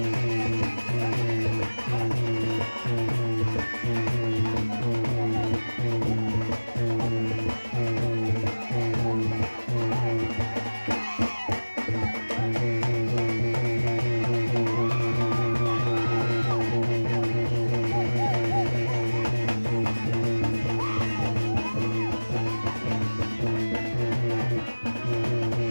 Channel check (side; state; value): both; inverted; correlation -1.00